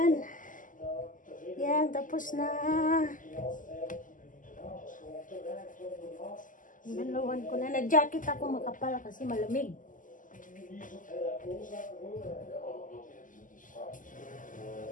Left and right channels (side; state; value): right; late; 0.38 ms